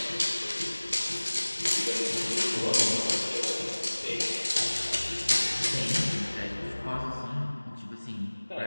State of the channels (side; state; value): both; inverted; correlation -1.00